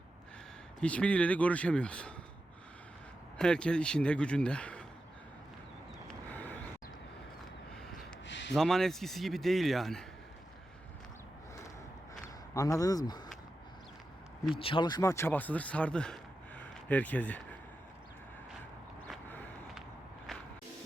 hiçbiriyle de görüşemiyoruz. Herkes işinde, gücünde. Zaman eskisi gibi değil yani. Anladınız mı? Bir çalışma çabasıdır, sardı herkesi.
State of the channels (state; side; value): normal; both; correlation 0.90